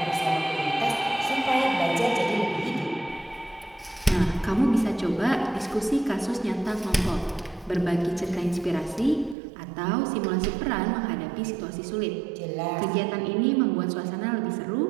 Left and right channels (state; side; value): drops out; left; at 9.3 s